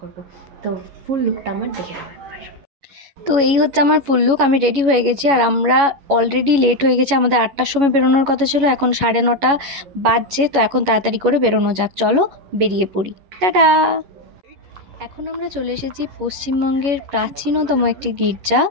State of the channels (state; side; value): late; left; 11 ms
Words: তো ফুল লুকটা আমার দেখে নাও একবার। তো এই হচ্ছে আমার ফুল লুক। আমি রেডি হয়ে গেছি আর আমরা অলরেডি লেট হয়ে গেছি। আমাদের 8টার সময় বেরোনোর কথা ছিল, এখন 9:30 বাজছে। তো এখন তাড়াতাড়ি করে বেরোনো যাক, চলো বেরিয়ে পড়ি। টাটা। এখন আমরা চলে এসেছি পশ্চিমবঙ্গের প্রাচীনতম একটি গির্জা,